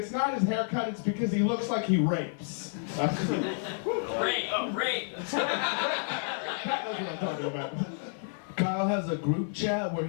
not his haircut, it's because he looks like he rapes. Rape. That's what I'm talking about. Kyle has a group chat where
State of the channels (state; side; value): silent; right; 58 dB below the other